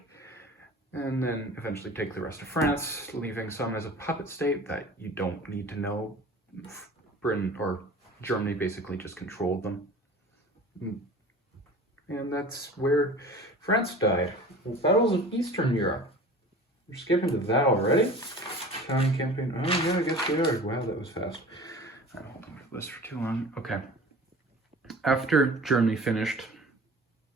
and then eventually take the rest of France, leaving some as a puppet state that you don't need to know. Britain or Germany basically just controlled them. And that's where France died. Battles of Eastern Europe. We're skipping to that already? Italian campaign. Oh, yeah, I guess we are. Wow, that was fast. I don't hold on to this for too long. Okay. After Germany finished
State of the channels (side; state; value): both; normal; correlation 0.40